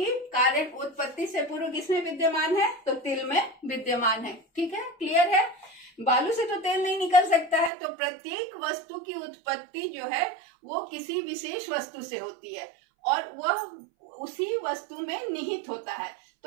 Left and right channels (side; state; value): left; drops out; at 7.7 s